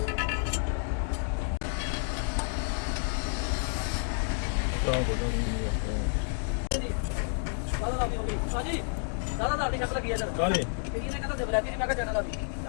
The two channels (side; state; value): right; silent; 58 dB below the other